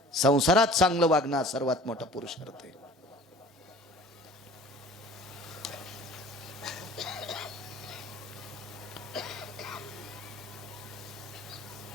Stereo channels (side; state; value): both; normal; correlation 0.46